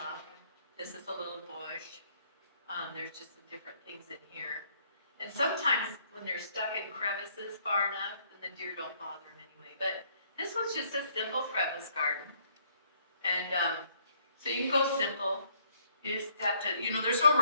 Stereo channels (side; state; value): both; inverted; correlation -0.66